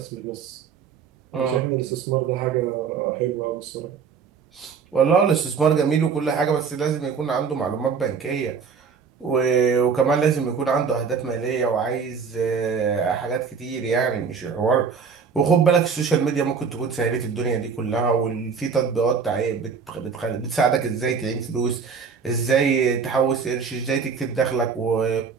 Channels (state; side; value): quieter; left; 6.0 dB